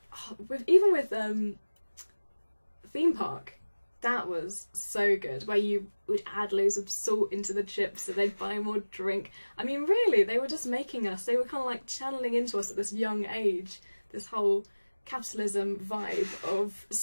Even with Theme Park, that was so good, where you would add loads of salt into the chips so they'd buy more drink. I mean, really, they were just making us, they were kind of like channeling into us at this young age, this whole capitalism vibe of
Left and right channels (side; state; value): both; inverted; correlation -1.00